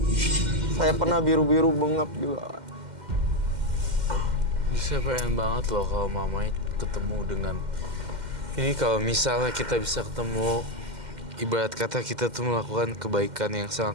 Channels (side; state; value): left; late; 2.1 ms